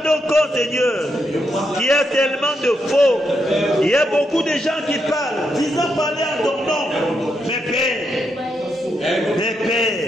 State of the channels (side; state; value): both; normal; correlation 0.81